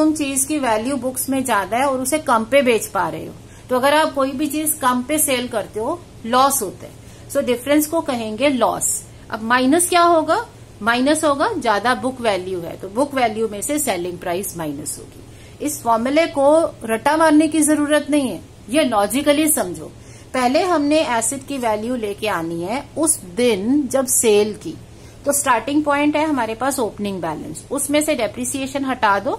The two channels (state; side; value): identical; both; correlation 1.00